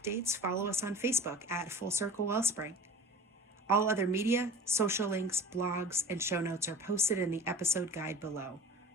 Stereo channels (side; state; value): both; normal; correlation 0.39